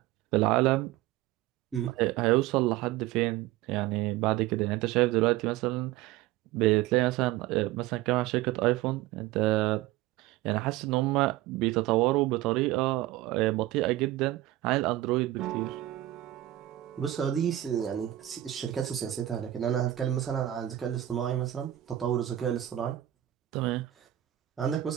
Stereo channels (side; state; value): left; quieter; 14.8 dB